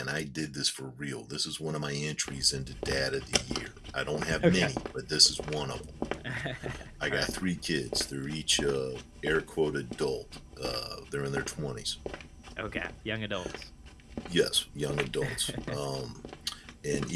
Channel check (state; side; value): identical; both; correlation 1.00